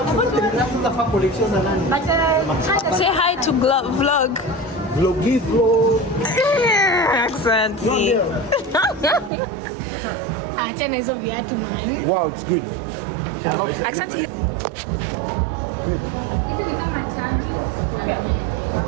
Say hi to vlog. Vloggy vlog. Accent. Achana hizo viatu mwenyewe. Wow, it's good. Accent. Hizi ni kama chanjo.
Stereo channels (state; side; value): drops out; left; at 9.3 s